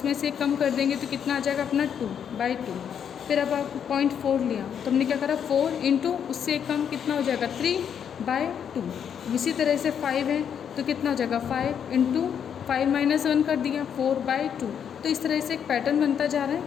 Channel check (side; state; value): right; quieter; 8.2 dB